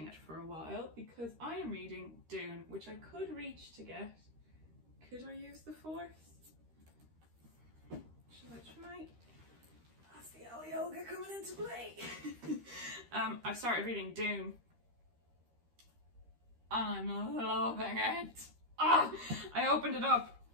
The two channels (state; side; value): late; left; 13 ms